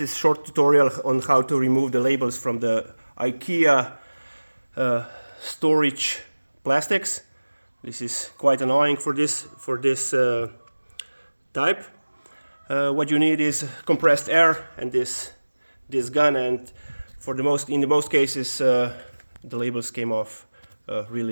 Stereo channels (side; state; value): both; inverted; correlation -1.00